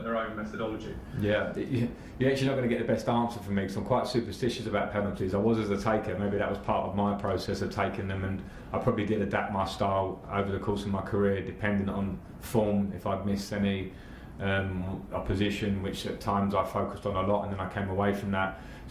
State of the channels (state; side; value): identical; both; correlation 1.00